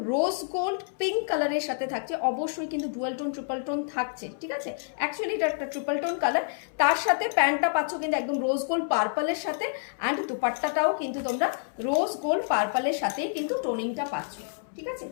রোজ গোল্ড পিঙ্ক কালারের সাথে থাকছে। অবশ্যই কিন্তু ডুয়াল টোন ট্রিপল টোন থাকছে, ঠিক আছে। অ্যাকচুয়ালি এটা একটা ট্রিপল টোন কালার, তার সাথে প্যান্টটা পাচ্ছ কিন্তু একদম রোজ গোল্ড পার্পলের সাথে, অ্যান্ড দুপাট্টাটাও কিন্তু তোমরা রোজ গোল্ড পার্পলের সাথেই কিন্তু টোনিংটা পাচ্ছ, ঠিক আছে।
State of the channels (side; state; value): right; silent; 59 dB below the other